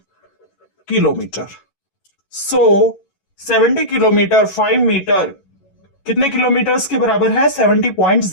kilometre. So 70 kilometre 5 metre कितने kilometres के बराबर है?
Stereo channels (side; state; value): right; late; 11 ms